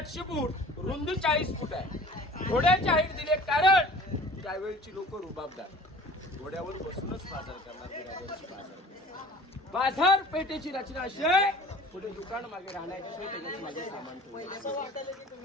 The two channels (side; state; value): both; normal; correlation 0.45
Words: फूट, रुंदी 40 फूट आहे. घोड्याची हाईट दिले कारण त्यावेळची लोक रुबाबदार, घोड्यावर बसूनच बाजार करणार. बाजारपेठेची रचना अशी आहे, पुढे दुकान मागे राहण्याची सोय, त्याच्यात मागे सामान ठेवलं.